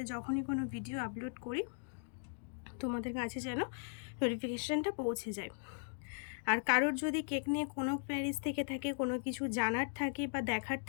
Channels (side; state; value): right; silent; digital silence